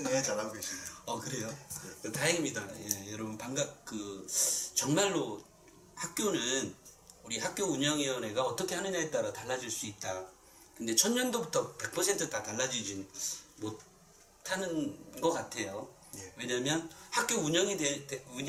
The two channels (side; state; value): both; identical; correlation 1.00